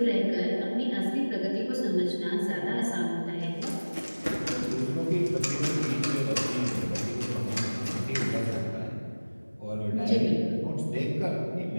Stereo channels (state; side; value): inverted; both; correlation -1.00